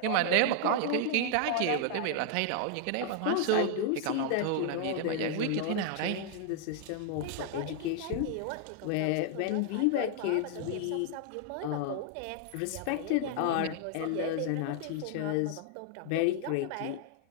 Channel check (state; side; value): different; both; correlation 0.00